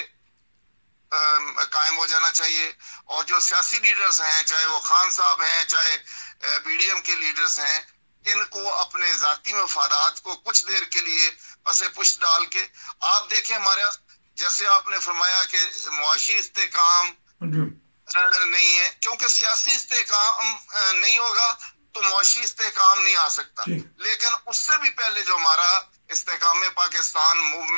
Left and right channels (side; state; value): both; inverted; correlation -1.00